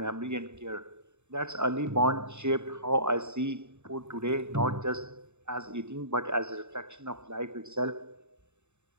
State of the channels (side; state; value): left; late; 0.82 ms